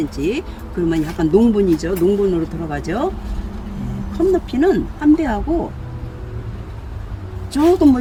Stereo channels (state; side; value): identical; both; correlation 1.00